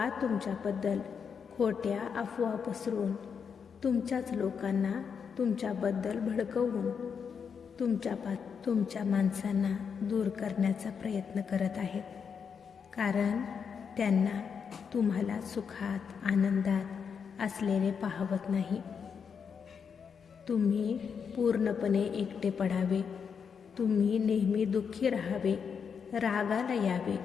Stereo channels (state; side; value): quieter; right; 6.5 dB